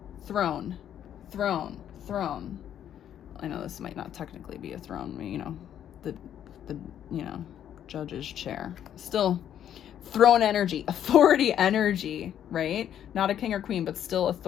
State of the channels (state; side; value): quieter; right; 10.1 dB